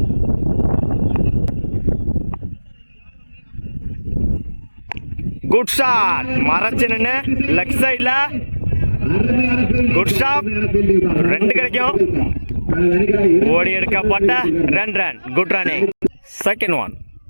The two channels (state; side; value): inverted; both; correlation -1.00